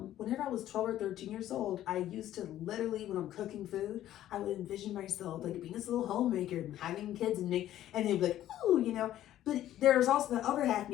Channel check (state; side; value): quieter; right; 12.8 dB